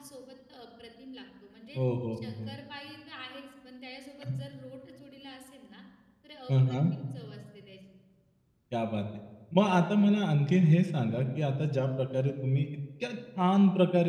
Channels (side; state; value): both; identical; correlation 1.00